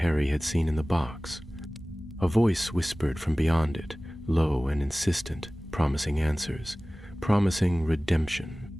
had seen in the box. A voice whispered from beyond it, low and insistent, promising answers, promising redemption.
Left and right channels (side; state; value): both; normal; correlation 0.98